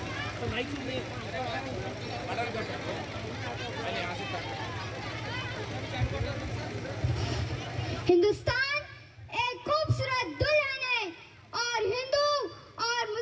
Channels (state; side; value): identical; both; correlation 1.00